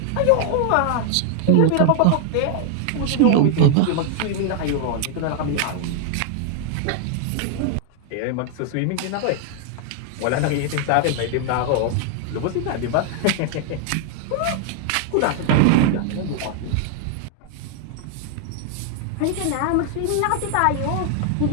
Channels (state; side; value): different; both; correlation 0.00